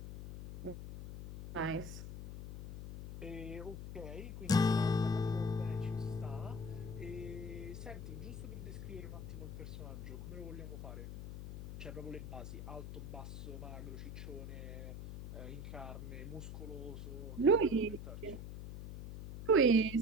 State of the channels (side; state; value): left; noise; hum, 8 dB below the sound